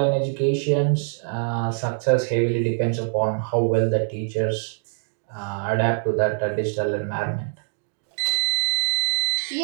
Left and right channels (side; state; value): left; silent; digital silence